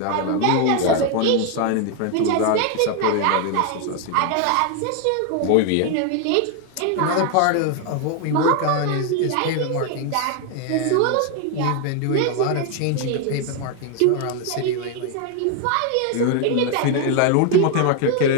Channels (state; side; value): different; both; correlation 0.01